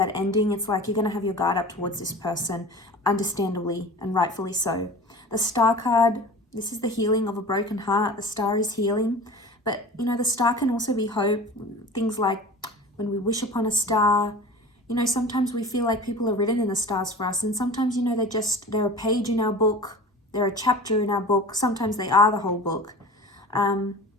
ending, it's like you're going to have your guard up towards this person, understandably and rightfully so. The Star card, this is the healing of a broken heart. The Star is healing. But, the Star can also be hope. Things like when we wish upon a star, sometimes we feel like people are written in the stars for us. And sometimes, they're a page in our book. They're a chapter in our book. Sometimes they are the whole book. And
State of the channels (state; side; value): normal; both; correlation 0.37